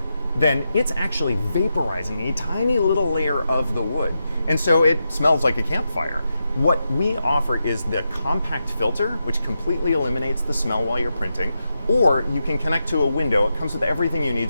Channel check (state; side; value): inverted; both; correlation -0.87